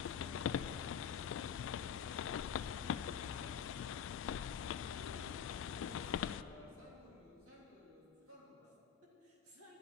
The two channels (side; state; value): right; quieter; 7.9 dB